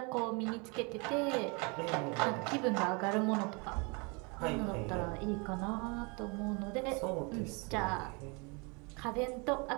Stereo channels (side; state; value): left; quieter; 30.9 dB